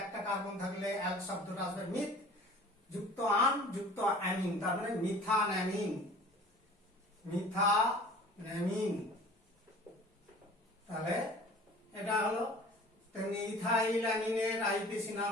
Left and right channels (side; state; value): both; normal; correlation 0.45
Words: একটা কার্বন থাকলে অ্যাল শব্দটা আসবে মিথ যুক্ত আন যুক্ত অ্যামিন, তার মানে মিথানঅ্যামিন, মিথানঅ্যামিন। তাহলে এটা হলো। তেমনি ইথাইল অ্যামিনের আইইউপিএসি